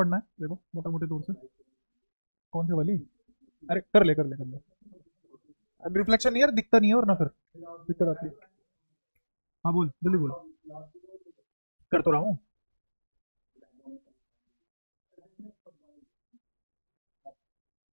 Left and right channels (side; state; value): both; inverted; correlation -1.00